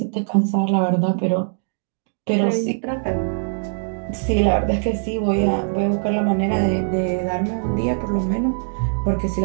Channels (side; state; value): left; silent; digital silence